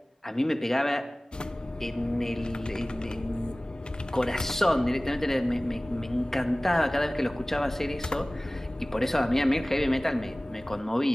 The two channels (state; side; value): normal; both; correlation 0.98